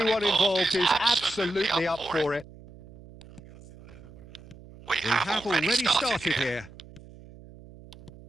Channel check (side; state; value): right; noise; hum, 20 dB below the sound